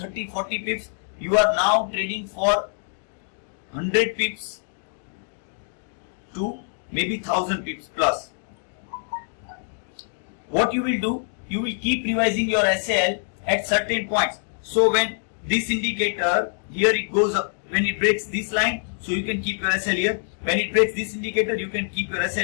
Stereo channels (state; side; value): silent; right; digital silence